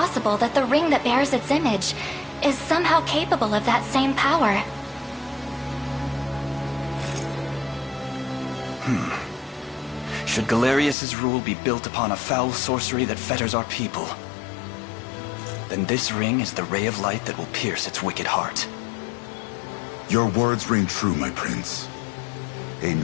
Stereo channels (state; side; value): drops out; right; at 11.0 s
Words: that the ring that bears its image is somehow capable of that same power. Should Galerius's rule be built upon a foul sorcery that fetters our people, then this ring is the ray of light that will pierce its wicked heart. Your words ring true, my prince.